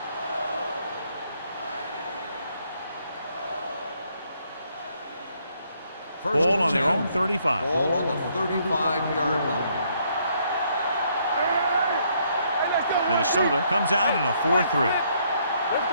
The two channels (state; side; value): inverted; both; correlation -0.70